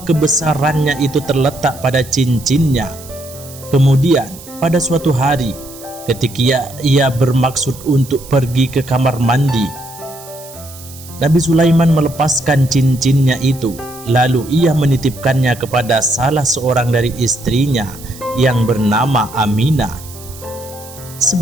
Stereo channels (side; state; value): right; noise; hiss, 18 dB below the sound